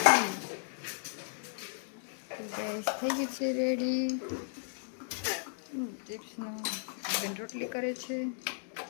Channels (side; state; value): right; silent; digital silence